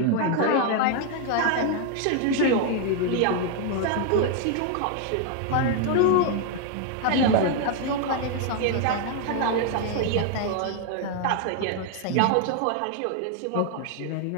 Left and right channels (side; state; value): both; different; correlation 0.00